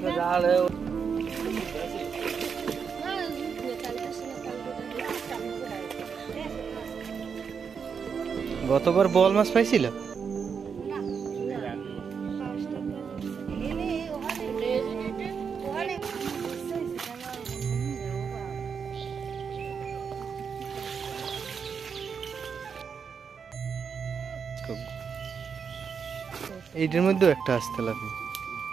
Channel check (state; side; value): quieter; left; 6.4 dB